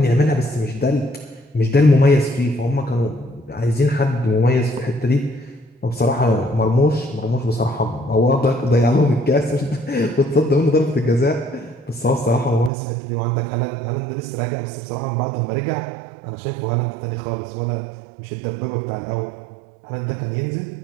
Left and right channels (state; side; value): drops out; left; at 12.7 s